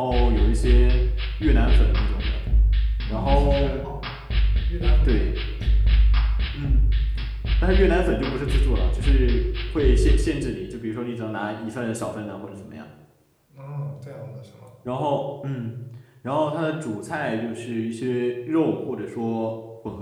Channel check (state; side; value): identical; both; correlation 1.00